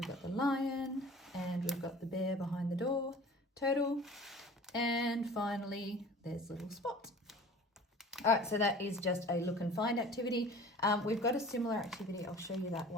got the lion, and we've got the bear behind the door, turtle, and finally there's little Spot. All right, so that is just a look and find activity. We've got a similar activity, I'll show you that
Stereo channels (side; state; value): both; normal; correlation 0.43